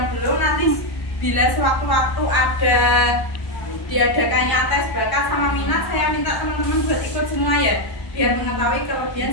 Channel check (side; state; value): right; late; 1.1 ms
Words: belum, nanti bila sewaktu-waktu ada diadakannya tes bakat sama minat, saya minta teman-teman buat ikut semua ya, biar mengetahui